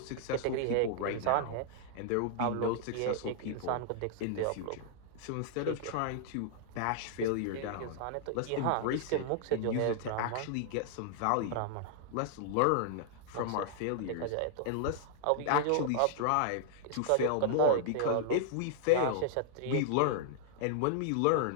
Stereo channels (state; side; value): different; both; correlation -0.01